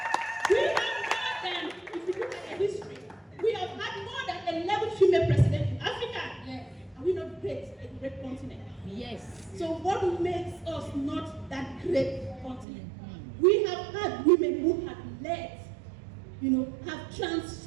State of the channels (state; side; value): drops out; left; at 12.7 s